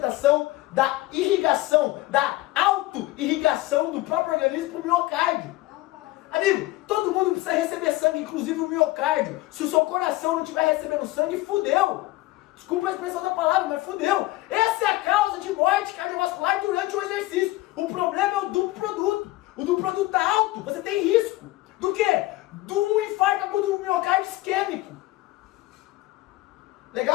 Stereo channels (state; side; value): quieter; right; 18.7 dB